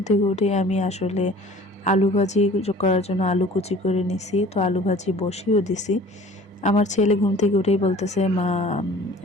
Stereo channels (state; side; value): normal; both; correlation 0.47